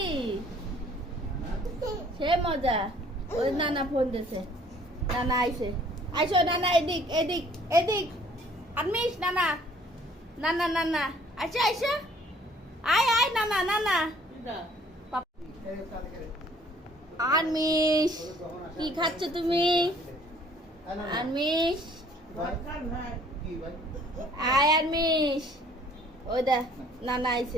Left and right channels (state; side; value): normal; both; correlation 0.58